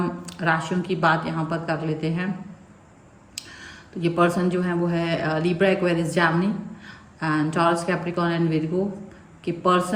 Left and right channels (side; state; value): both; identical; correlation 1.00